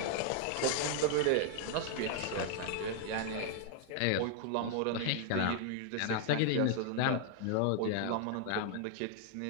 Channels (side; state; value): both; different; correlation 0.00